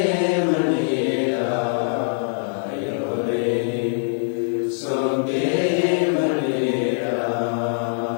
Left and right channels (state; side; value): silent; right; digital silence